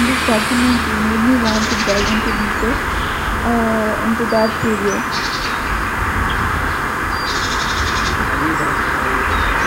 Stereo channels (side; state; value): both; identical; correlation 1.00